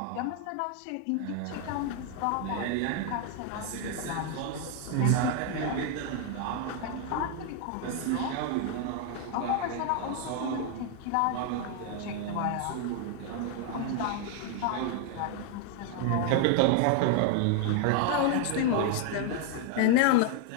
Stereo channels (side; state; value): both; different; correlation 0.00